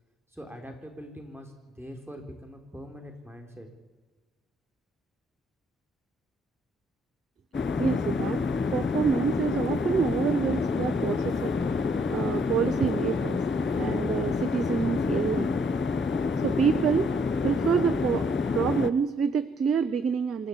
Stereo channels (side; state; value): both; normal; correlation 0.68